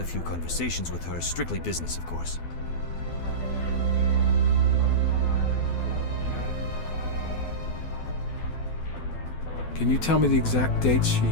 a few conversations with her, strictly business, of course. Can you tell me the exact dates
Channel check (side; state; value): right; late; 12 ms